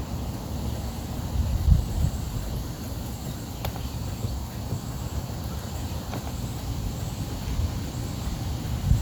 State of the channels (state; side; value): identical; both; correlation 1.00